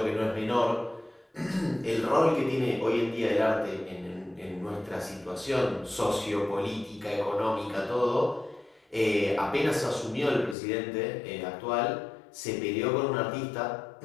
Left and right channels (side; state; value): right; drops out; at 10.6 s